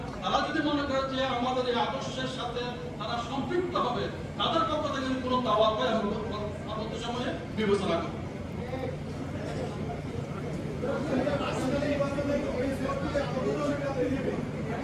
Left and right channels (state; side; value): identical; both; correlation 1.00